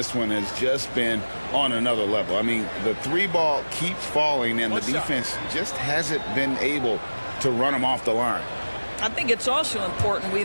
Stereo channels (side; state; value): both; inverted; correlation -1.00